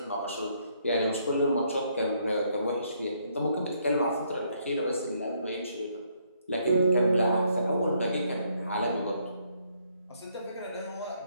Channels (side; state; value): both; inverted; correlation -0.70